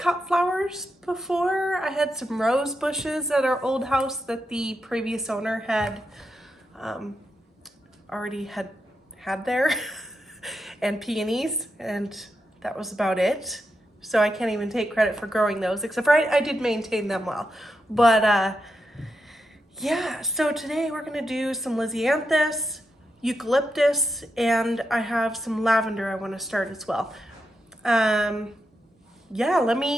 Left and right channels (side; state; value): both; normal; correlation 0.85